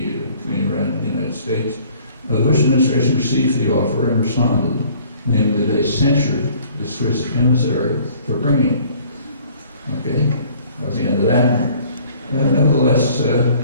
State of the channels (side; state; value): both; inverted; correlation -0.55